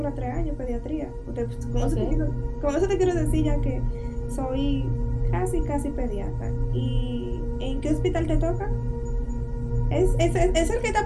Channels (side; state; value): both; identical; correlation 1.00